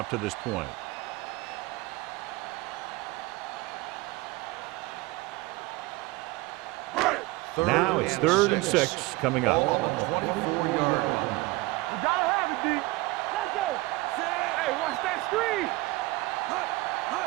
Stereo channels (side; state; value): left; quieter; 21.7 dB